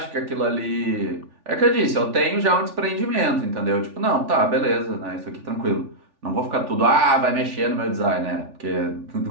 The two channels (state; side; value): late; left; 3.4 ms